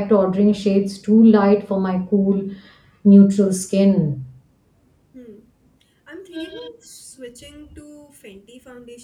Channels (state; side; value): identical; both; correlation 1.00